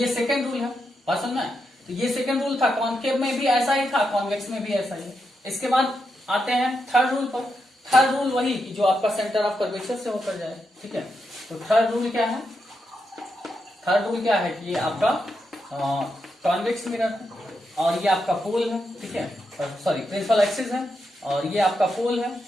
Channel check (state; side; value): normal; both; correlation 0.84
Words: सेकंड रूल है, बात समझ में। तो ये सेकंड रूल था, कॉनकेव में भी ऐसा ही था, कॉन्वेक्स में भी ऐसा ही है। इसके बाद आते हैं थर्ड रूल पर। थर्ड रूल वही कि जो आपका सेंटर ऑफ कर्वेचर से होकर जाए। ठीक है, तो थर्ड रूल क्या है, थर्ड रूल क्या है कि ये आपका कॉन्वेक्स मिरर है और ये आपका पोल है। ठीक है, सॉरी प्रिंसिपल एक्सिस है और ये आपका पोल है,